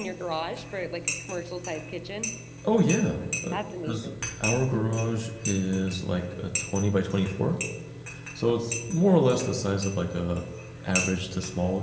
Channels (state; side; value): identical; both; correlation 1.00